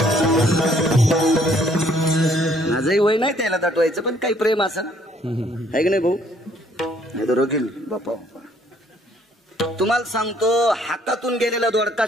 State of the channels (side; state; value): both; normal; correlation 0.63